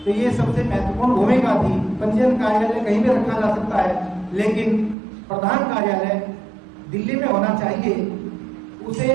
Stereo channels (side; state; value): left; drops out; at 5.0 s